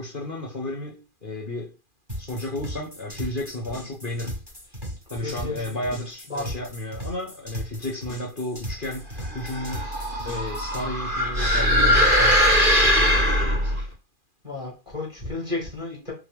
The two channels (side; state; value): left; late; 2.4 ms